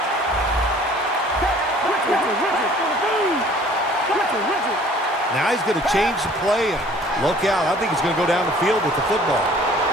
Now he's going to change the play. Look out. I think he's going to go down the field with the football.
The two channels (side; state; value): both; normal; correlation 0.53